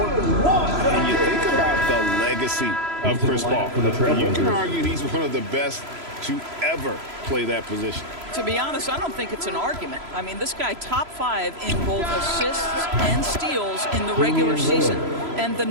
And you think about the legacy of Chris Paul. You can argue he's one of the best to ever play that position. To be honest, I don't think it's an argument. I mean, this guy top 5 in both assists and steals in the regular season. And the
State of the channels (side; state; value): left; late; 3.0 ms